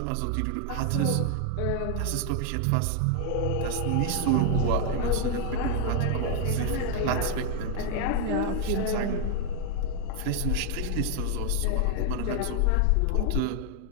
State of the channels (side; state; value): both; different; correlation 0.00